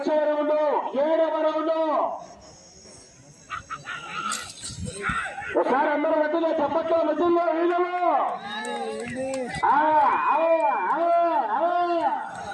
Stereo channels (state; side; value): identical; both; correlation 1.00